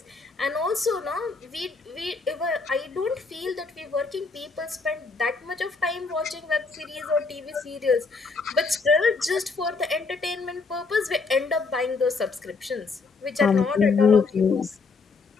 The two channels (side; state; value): right; quieter; 4.3 dB